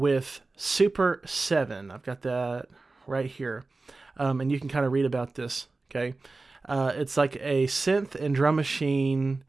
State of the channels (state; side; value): quieter; left; 3.5 dB